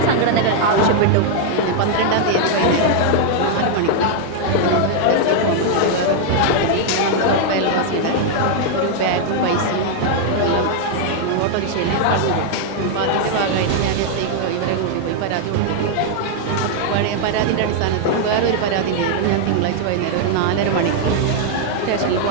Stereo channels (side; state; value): both; different; correlation 0.00